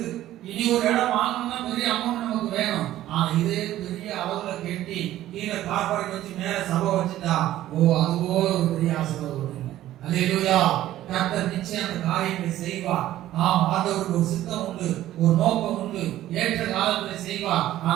இனி ஒரு இடம் வாங்கணும்னா பெரிய அமௌண்ட் நமக்கு வேணும். ஆனா இதே பெரிய அளவுல கட்டி கீழே கார் பார்க்கிங் வச்சு மேல சபை வச்சுட்டா அதுவோ ஒரு பெரிய ஆசீர்வாதம். அல்லேலூயா. கர்த்தர் நிச்சயம் அந்த காரியங்களை செய்வார். ஆண்டவருக்கு ஒரு சித்தம் உண்டு, ஒரு நோக்கம் உண்டு, ஏற்ற காலத்தில் செய்வார்.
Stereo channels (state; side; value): quieter; left; 13.8 dB